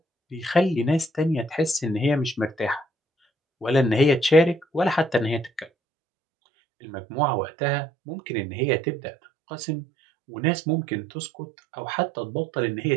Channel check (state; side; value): drops out; left; at 5.7 s